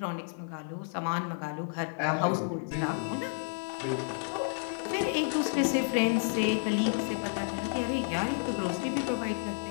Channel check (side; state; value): right; silent; 57 dB below the other